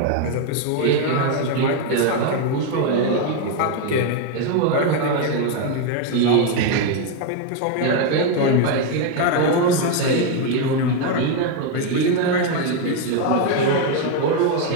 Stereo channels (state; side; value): different; both; correlation 0.01